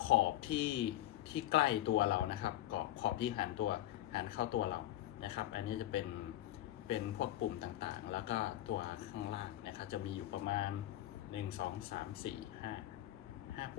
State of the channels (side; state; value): right; quieter; 14.3 dB